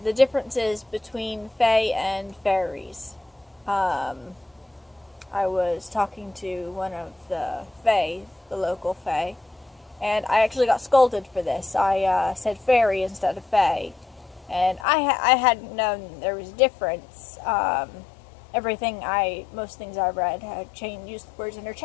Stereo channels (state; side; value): drops out; right; at 14.9 s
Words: differences between fae and fairies. I was talking to one of the fae, the local fae, and I actually got scolded for this. I said fairy instead of fae. And I hadn't known there was a difference. Most things I read had used the words